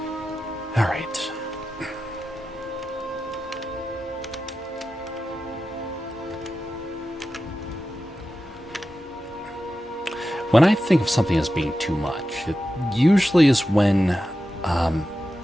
All right. When I think of something as being too much, it usually is when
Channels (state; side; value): normal; both; correlation 0.92